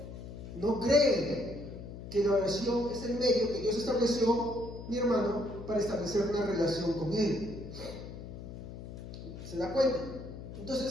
no creen que la oración es el medio que Dios estableció, mi hermano, para establecer una relación con Él. ¿Se da cuenta?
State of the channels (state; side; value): noise; left; hum, 11 dB below the sound